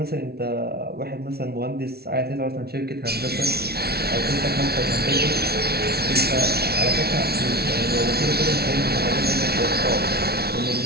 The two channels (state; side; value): late; left; 0.45 ms